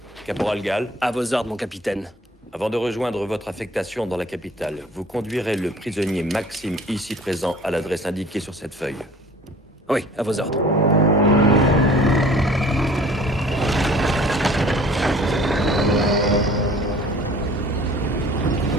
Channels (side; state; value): both; normal; correlation 0.48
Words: Caporal Gall, À vos ordres, mon capitaine. avant de rejoindre votre affectation dans la capitale, vous conduirez le prisonnier Maxime ici présent à l'adresse indiquée sur cette feuille. Oui, à vos ordres.